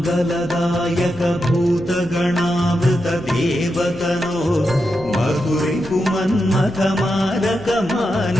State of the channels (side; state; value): left; noise; hum, 19 dB below the sound